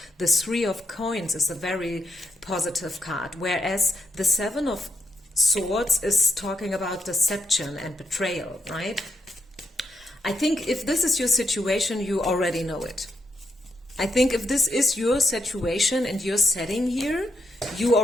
The 3 of Coins is a very positive card, whereas the 7 of Swords is talking about deception and betrayal, right? I think if this is your situation, you already know it. I think if this is your situation and your setting here, you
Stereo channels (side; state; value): both; normal; correlation 0.81